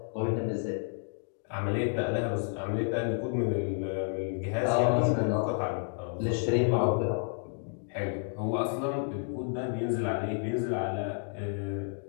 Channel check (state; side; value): silent; right; 57 dB below the other